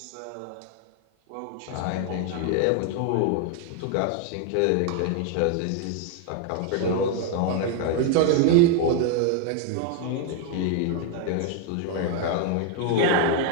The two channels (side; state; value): both; different; correlation 0.00